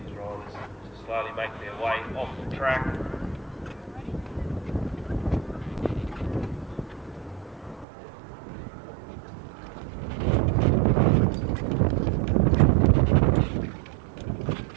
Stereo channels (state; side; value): drops out; left; at 7.9 s